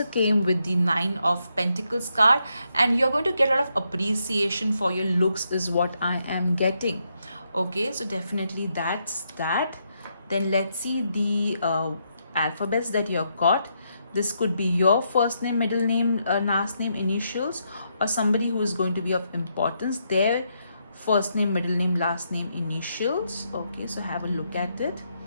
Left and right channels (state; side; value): inverted; both; correlation -0.79